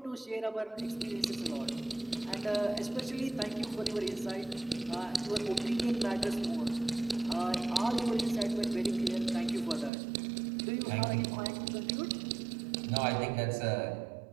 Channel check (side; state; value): left; drops out; at 9.9 s